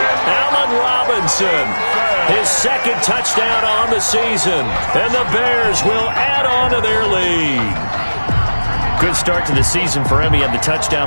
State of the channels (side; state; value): both; inverted; correlation -1.00